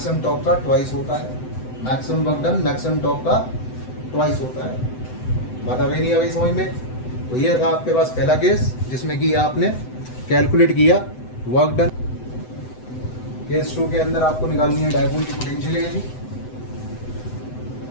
torque का ट्वाइस होता है, maximum work done maximum torque का ट्वाइस होता है। बात आ गई नहीं आ गई समझ में? तो ये था आपके पास पहला केस जिसमें कि आपने कैलकुलेट किया वर्क डन। केस 2 के अंदर आपको निकालनी है डायपोल की पोटेंशियल एनर्जी।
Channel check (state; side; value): late; right; 7.9 ms